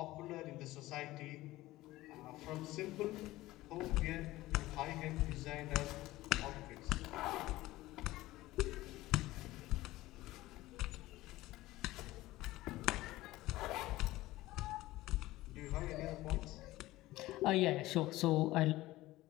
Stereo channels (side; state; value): right; quieter; 17.5 dB